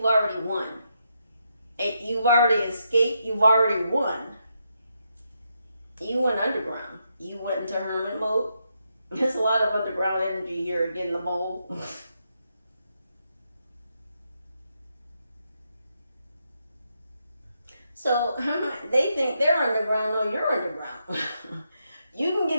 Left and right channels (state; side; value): inverted; both; correlation -0.81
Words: already won. You've already escaped. You've already won. You went underground. You went into hermit mode. There's a lot of underground energy here again, the mole. So they think they're underground. No, you're underground. You can